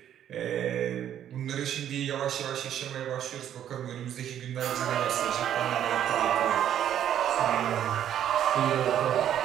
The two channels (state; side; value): quieter; left; 10.5 dB